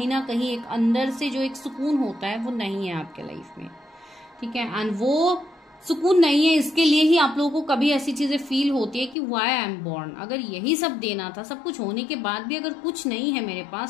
ना कहीं एक अंदर से जो एक सुकून होता है वो नहीं है आपके लाइफ में, ठीक है। एंड वो सुकून नहीं है, इसके लिए ही आप लोगों को कभी ऐसी चीजें फील होती है कि व्हाई आई एम बॉर्न। अगर यही सब देना था, सब कुछ होने के बाद भी अगर कुछ नहीं है मेरे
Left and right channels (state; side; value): drops out; right; at 9.2 s